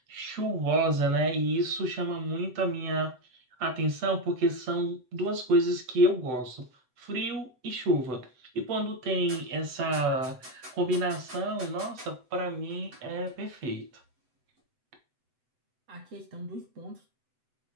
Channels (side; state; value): left; late; 7.9 ms